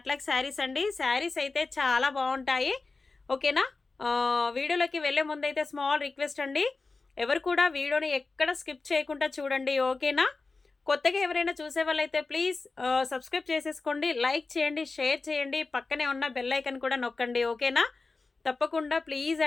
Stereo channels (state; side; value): quieter; right; 3.9 dB